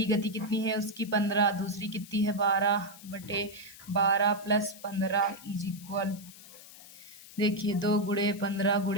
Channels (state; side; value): noise; left; hiss, 18 dB below the sound